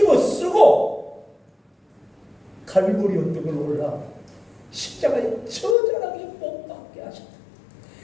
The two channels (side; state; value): right; drops out; at 5.8 s